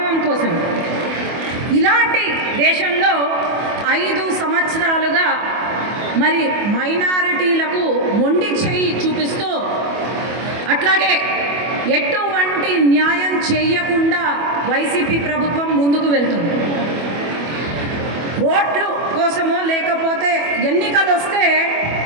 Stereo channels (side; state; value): left; late; 25 ms